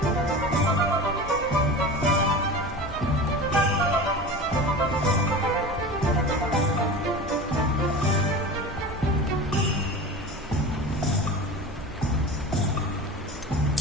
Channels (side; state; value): both; normal; correlation 0.32